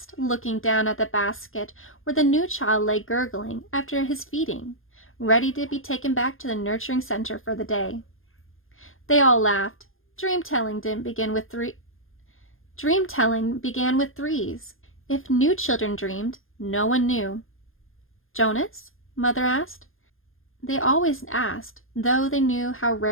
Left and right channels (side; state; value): right; late; 0.60 ms